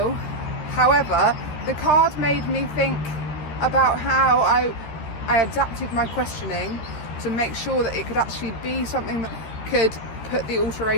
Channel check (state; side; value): late; right; 13 ms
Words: However, the card made me think about how I adapted my questioning to make sure that it could actually be something that could put the